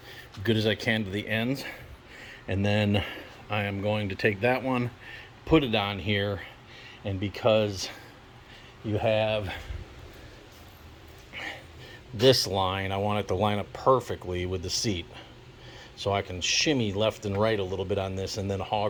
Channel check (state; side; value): identical; both; correlation 1.00